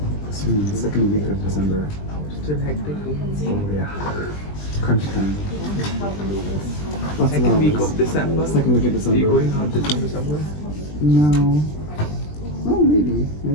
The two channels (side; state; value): right; late; 20 ms